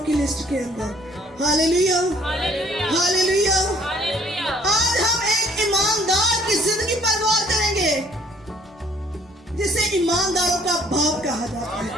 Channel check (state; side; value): normal; both; correlation 0.59